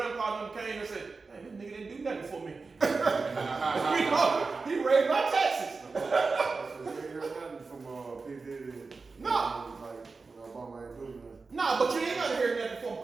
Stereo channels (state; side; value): quieter; left; 4.2 dB